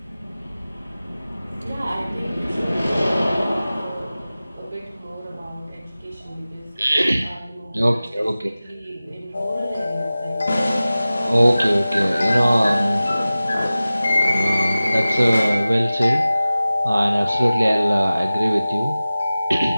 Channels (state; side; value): inverted; both; correlation -0.97